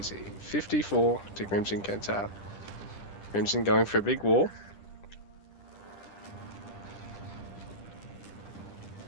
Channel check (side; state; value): right; late; 10 ms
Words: 54 to Crimson Kentab. Crimson going for a big wall.